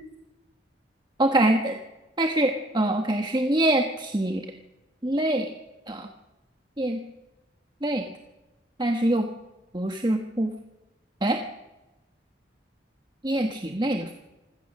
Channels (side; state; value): both; normal; correlation 0.62